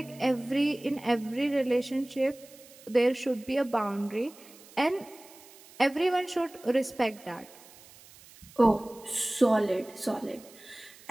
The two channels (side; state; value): right; noise; hiss, 22 dB below the sound